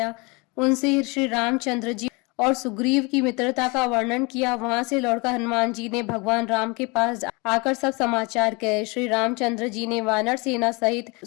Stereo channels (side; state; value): right; quieter; 27.9 dB